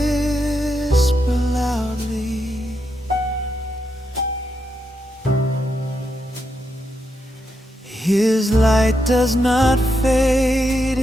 loudly, His light does not fade,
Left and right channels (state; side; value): normal; both; correlation 0.83